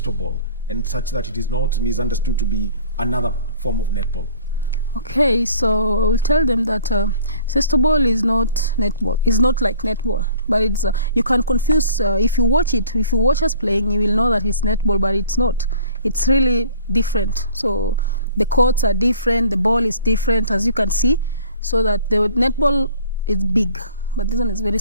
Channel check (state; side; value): inverted; both; correlation -0.52